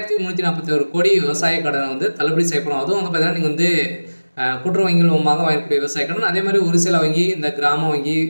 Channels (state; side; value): inverted; both; correlation -1.00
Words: கோடி விவசாய கடனை வந்து தள்ளுபடி செய்யப்படும். அதுவும் வந்து பார்த்தீங்கன்னா நீங்கள் வந்து கூட்டுறவு வங்கிகள் மூலமாக வாங்கக்கூடிய விவசாய கடன், அதே மாதிரி ஒரு சில வங்கி, இந்த கிராம வங்கி,